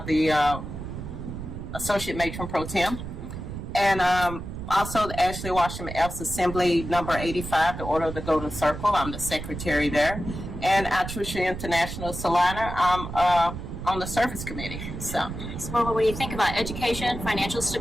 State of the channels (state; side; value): noise; right; rumble, 8 dB below the sound